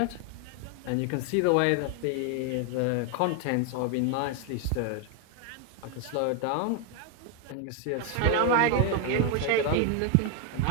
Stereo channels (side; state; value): both; different; correlation 0.01